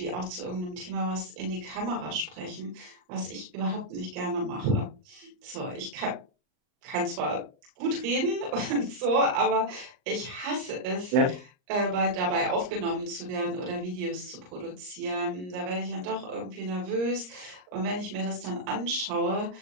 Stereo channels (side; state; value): left; late; 39 ms